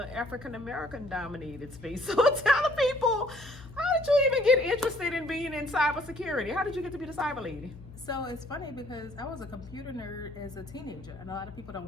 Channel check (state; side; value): noise; left; hum, 17 dB below the sound